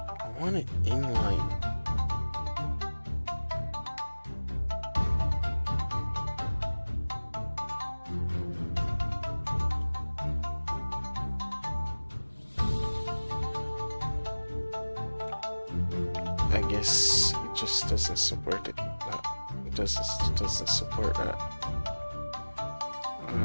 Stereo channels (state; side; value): inverted; both; correlation -1.00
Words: I want it inline. I guess it just doesn't support it. It doesn't support that.